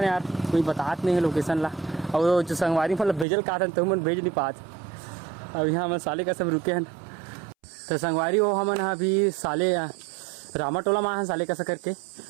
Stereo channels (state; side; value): drops out; left; at 3.2 s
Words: नहीं यार कोई बतात नहीं है लोकेशन ला और जो संगवारी मतलब भेजल का था तो मन भेज नहीं पात अब यहाँ हम साले का सब रुके हैं तो संगवारी हो हम अभी साले रामाटोला में साले का करके